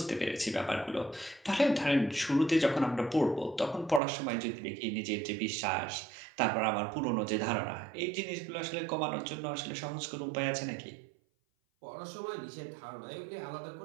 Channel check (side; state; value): left; drops out; at 4.0 s